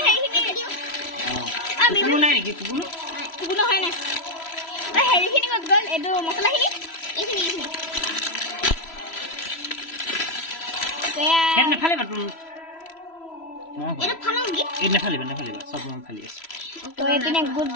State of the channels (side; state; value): right; late; 3.0 ms